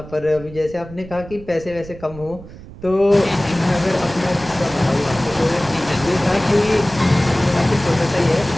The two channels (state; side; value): noise; right; rumble, 16 dB below the sound